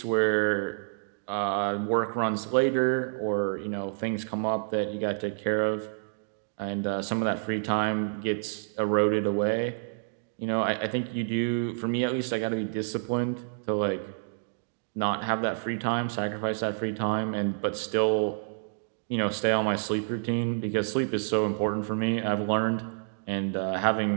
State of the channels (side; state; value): left; silent; digital silence